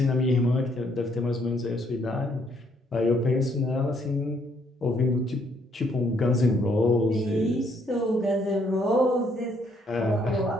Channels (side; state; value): both; normal; correlation 0.69